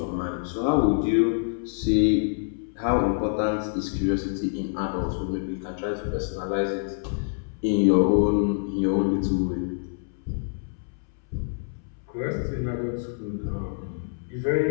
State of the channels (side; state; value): right; silent; 61 dB below the other